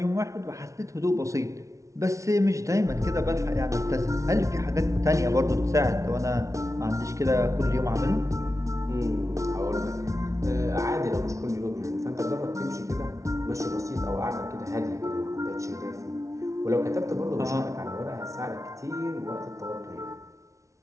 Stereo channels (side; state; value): left; late; 0.15 ms